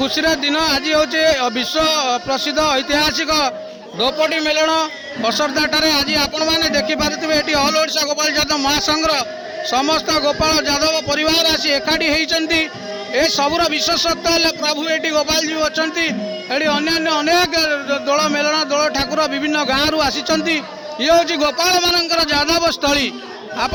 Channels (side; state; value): both; identical; correlation 1.00